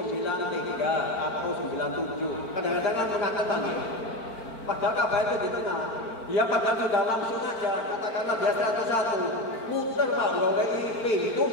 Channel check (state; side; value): late; right; 4.5 ms